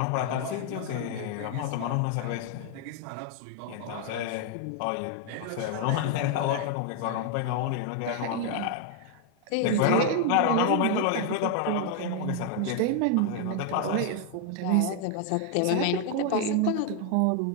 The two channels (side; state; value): both; different; correlation 0.00